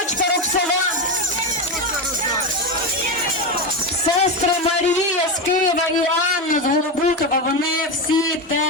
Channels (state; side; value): normal; both; correlation 0.15